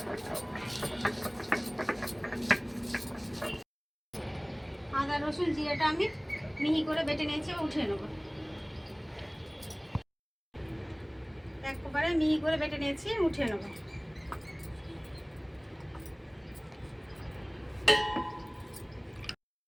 আদা রসুন জিরেটা আমি মিহি করে বেটে নিয়েছি, উঠিয়ে নেব। একবারে মিহি করে বেটে নিয়েছি, উঠিয়ে নেব।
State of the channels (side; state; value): both; identical; correlation 1.00